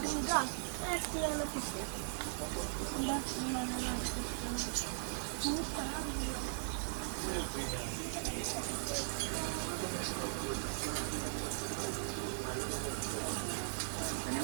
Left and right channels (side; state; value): left; silent; digital silence